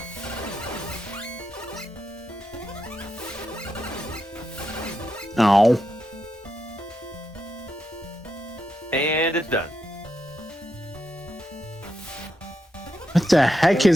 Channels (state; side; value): normal; both; correlation 0.84